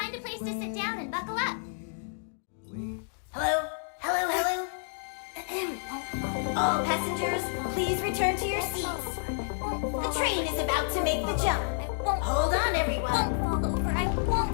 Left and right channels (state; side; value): silent; right; digital silence